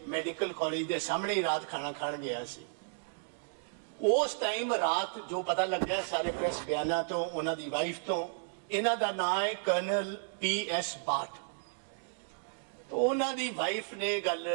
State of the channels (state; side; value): silent; left; digital silence